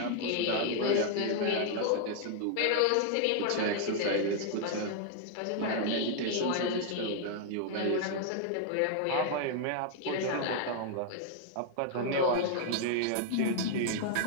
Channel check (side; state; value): both; different; correlation 0.00